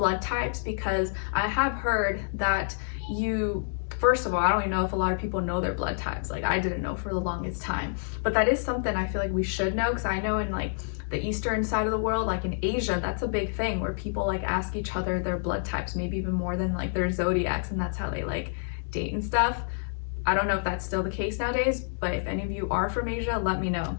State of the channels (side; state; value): right; silent; digital silence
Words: types, because I have heard that first of all, I don't even know if a lot of people know their blood types. Like I didn't know for the longest time, but that is something I feel like we should know, because I know in like the eastern side of the world, like in Asia, that's a big thing where people like ask each other their blood types, maybe even more than like their zodiacs, and that's how they like date and stuff. I don't know if that's still the case nowadays, but if any of you are from Asia, let me know.